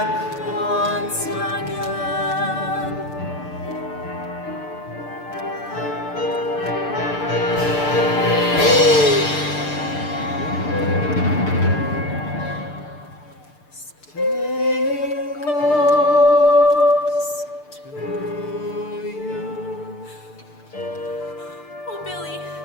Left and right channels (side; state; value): right; late; 6.7 ms